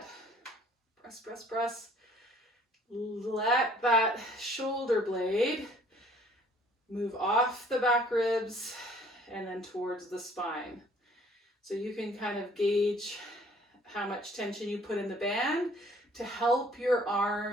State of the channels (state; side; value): normal; both; correlation 0.57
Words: press, press, press. Let that shoulder blade move off the back ribs and then towards the spine. So you can kind of gauge how much tension you put in the band to help your